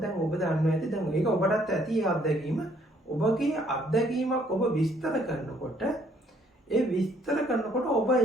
ඔබ දන්නවා ඇති දැන් ඒක ඔබටත් ඇති අත්දැකීම. ඔබගේ අත්දැකීමක් ඔබ විස්තර කරනකොට ඔබ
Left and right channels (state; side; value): normal; both; correlation 0.65